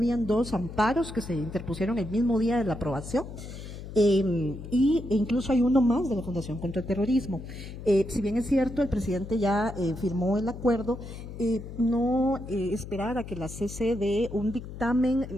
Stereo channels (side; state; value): left; noise; hum, 11 dB below the sound